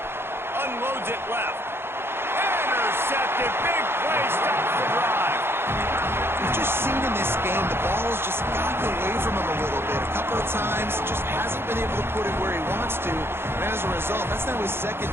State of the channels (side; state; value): left; late; 0.11 ms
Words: Unloads it left. Intercepted. Big play. Stops the drive. We've just seen in this game the ball has just gotten away from him a little bit. A couple of times, just hasn't been able to put it where he wants to. And as a result, that's now his